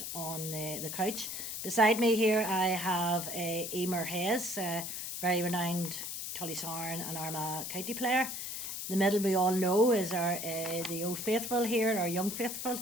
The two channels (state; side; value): noise; left; hiss, 5 dB below the sound